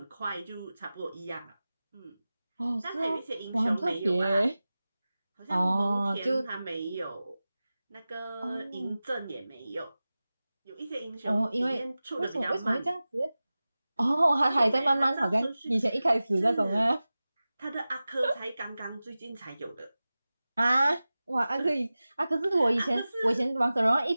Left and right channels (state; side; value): inverted; both; correlation -0.97